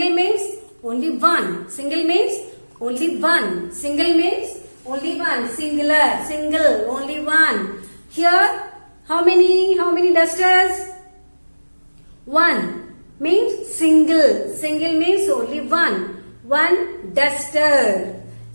means only one. Single means only one. Single means only one. Singular. Single. Only one. Here how many dusters? One means single. Single means only one. One duster.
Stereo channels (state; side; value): inverted; both; correlation -1.00